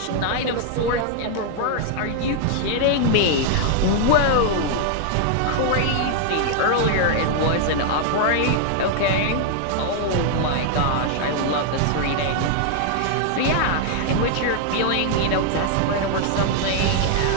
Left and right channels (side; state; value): both; different; correlation 0.00